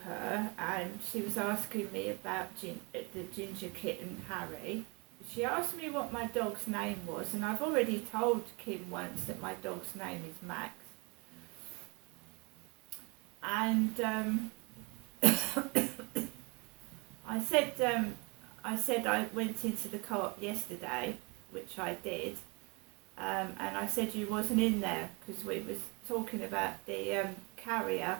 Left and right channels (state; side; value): quieter; left; 29.2 dB